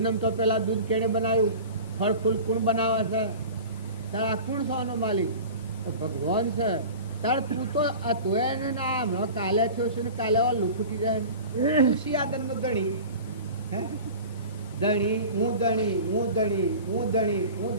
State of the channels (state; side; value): inverted; both; correlation -0.37